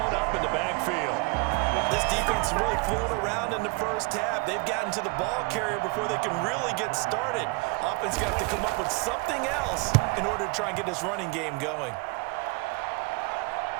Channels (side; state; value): left; quieter; 27.7 dB